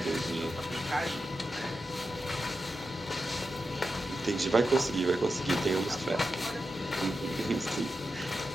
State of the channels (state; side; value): normal; both; correlation 0.89